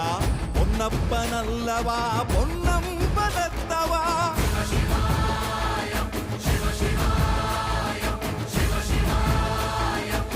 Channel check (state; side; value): identical; both; correlation 1.00